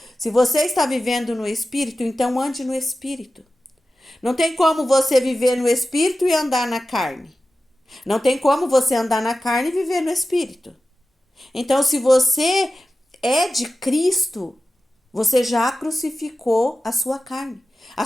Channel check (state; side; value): normal; both; correlation 0.94